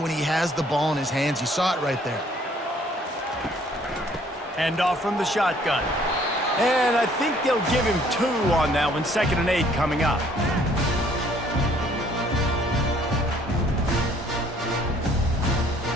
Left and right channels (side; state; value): both; normal; correlation 0.61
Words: he has the ball in his hands. You saw it right there. Hand off from the shotgun. And I think they'll give him 2 on that one. 2nd and 8 coming up.